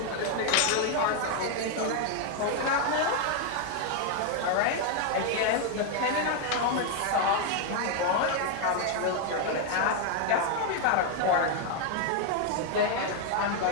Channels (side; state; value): both; different; correlation 0.01